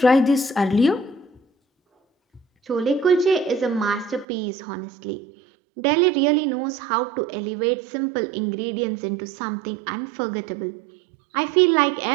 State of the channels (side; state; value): left; drops out; at 4.2 s